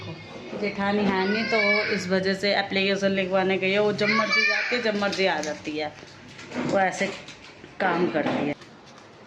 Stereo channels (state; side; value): identical; both; correlation 1.00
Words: जेठानी है नहीं तो इस वजह से एप्लीकेशन लिखवाने गई है। वो जब मर्जी जाती है, जब मर्जी आ जाती है, वो ऐसे काम करती है।